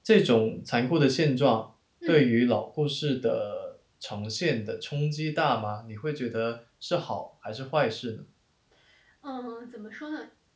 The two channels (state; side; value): identical; both; correlation 1.00